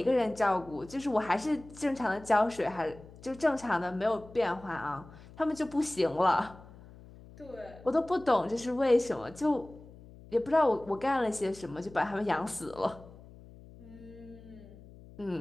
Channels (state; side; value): noise; left; hum, 20 dB below the sound